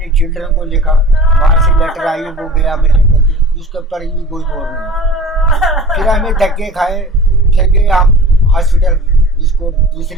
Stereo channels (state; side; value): normal; both; correlation 0.40